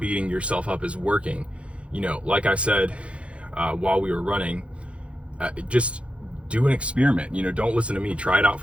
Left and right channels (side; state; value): left; late; 0.061 ms